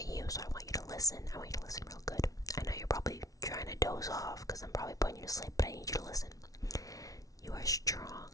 so I want you to listen. I want you to listen real good. I know you're probably trying to doze off because I'm probably putting you to sleep, but I need you to listen. You are strong.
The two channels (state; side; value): late; right; 0.18 ms